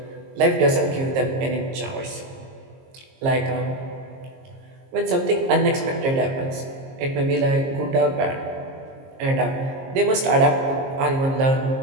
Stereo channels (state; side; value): late; left; 22 ms